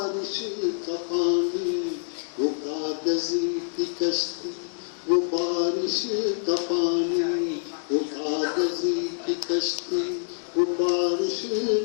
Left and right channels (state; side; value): silent; right; digital silence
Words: का पानी, वो कागज की कश्ती वो बारिश का पानी, वो कागज की कश्ती वो बारिश